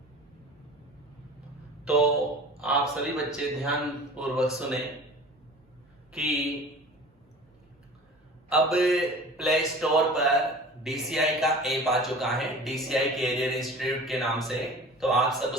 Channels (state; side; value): normal; both; correlation 0.41